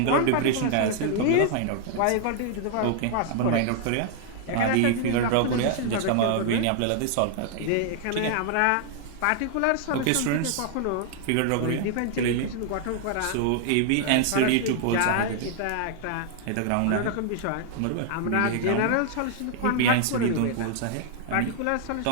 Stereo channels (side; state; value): both; different; correlation 0.00